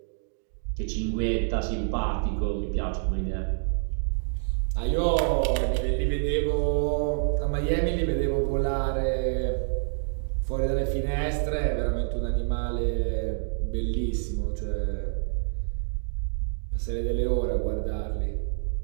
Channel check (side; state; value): left; silent; digital silence